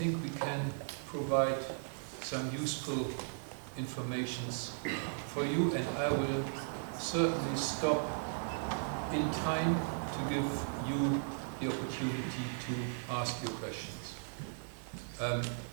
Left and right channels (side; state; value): left; silent; 53 dB below the other